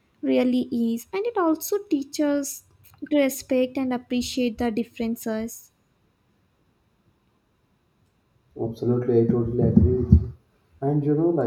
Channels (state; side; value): identical; both; correlation 1.00